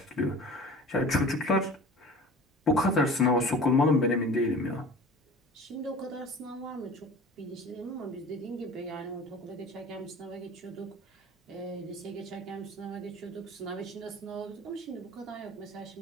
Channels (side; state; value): both; normal; correlation 0.40